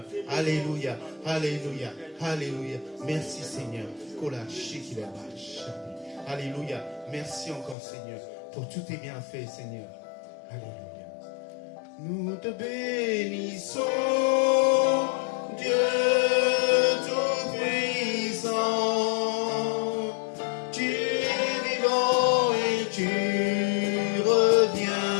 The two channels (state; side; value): drops out; right; at 7.8 s